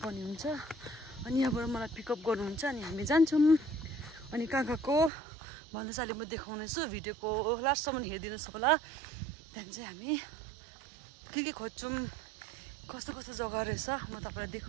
हुन्छ। अनि यहाँबाट मलाई पिकअप गर्नुहुन्छ अनि हामी जान्छौँ। अनि कहाँ गएको भन्दै चाहिँ अहिले म देखाउनेछु। भिडियोको लास्टसम्म हेरिदिनुहोस् होला। त्यहाँदेखि चाहिँ हामी के खोज्छौँ, कस्तो कस्तो जग्गा रहेछ म तपाईँलाई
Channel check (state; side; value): drops out; left; at 5.1 s